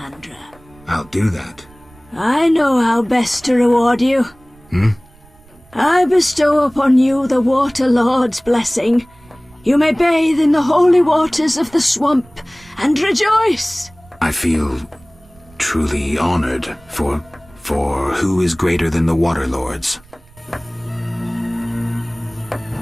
I'll do that. I know how best to reward you. I bestow upon you the Water Lord's blessing. You may bathe in the holy waters of the swamp and rejoice. I feel truly honored for who is greater than the Water Lords?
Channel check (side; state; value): right; noise; rumble, 27 dB below the sound